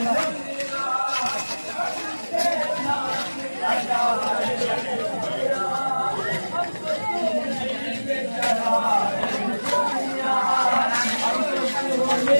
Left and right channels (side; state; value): both; inverted; correlation -1.00